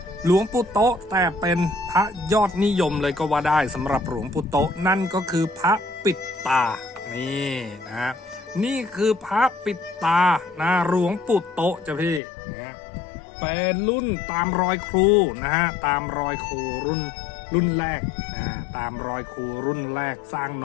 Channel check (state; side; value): drops out; right; at 12.2 s